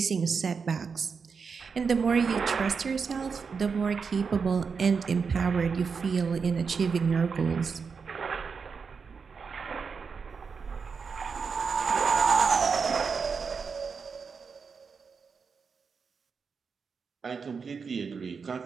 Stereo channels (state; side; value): quieter; left; 5.5 dB